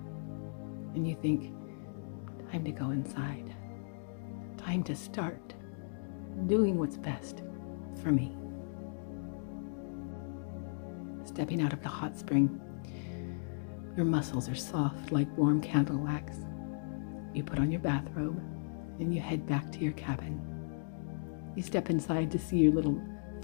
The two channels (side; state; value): right; silent; digital silence